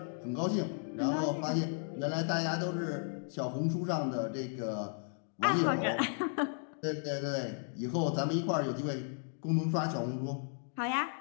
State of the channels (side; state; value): right; silent; 55 dB below the other